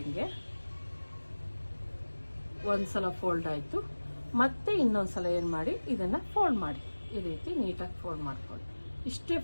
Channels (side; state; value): both; inverted; correlation -1.00